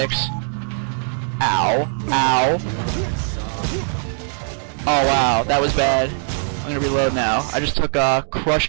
Ow. Ow. Oh wow, that was bad. I'm gonna reload now. I just took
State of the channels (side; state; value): left; silent; 65 dB below the other